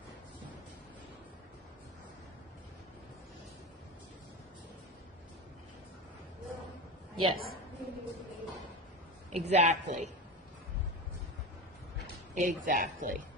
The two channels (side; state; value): both; normal; correlation 0.23